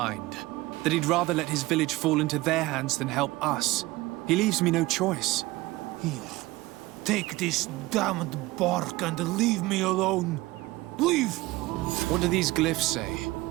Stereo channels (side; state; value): left; quieter; 19.7 dB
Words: That he'd rather let his village fall into their hands than help us. He leaves me no choice. Here, take this damned bark and leave me alone. Leave! What do these glyphs say?